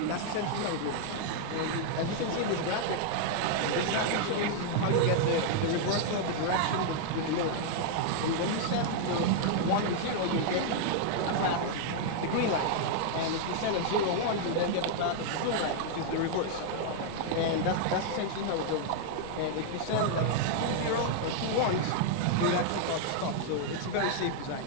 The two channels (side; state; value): both; different; correlation -0.01